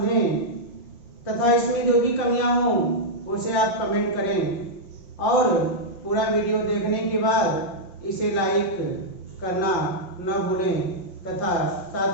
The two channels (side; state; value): right; late; 5.6 ms